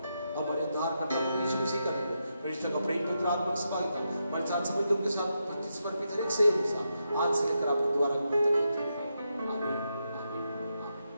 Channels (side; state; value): both; inverted; correlation -0.84